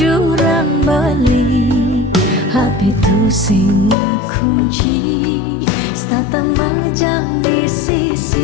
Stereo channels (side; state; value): right; drops out; at 4.0 s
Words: beli Happy tu sing kunci stata majang di